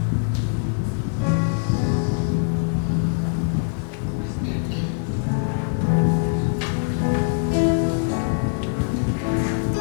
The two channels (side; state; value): right; silent; 64 dB below the other